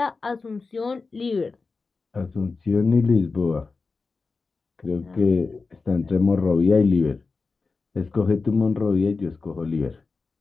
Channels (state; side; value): quieter; right; 4.2 dB